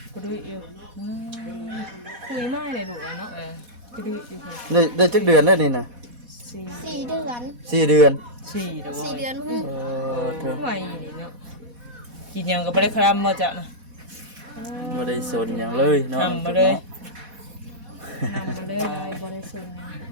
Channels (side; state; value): left; late; 4.1 ms